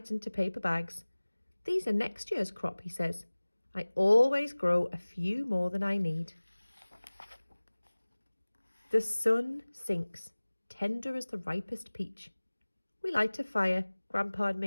into paper bags. These are next year's crop, he says. I always grow a few more than I need. The sun sinks, tender as the ripest peach. We light a fire, Grandpa and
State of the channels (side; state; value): both; inverted; correlation -1.00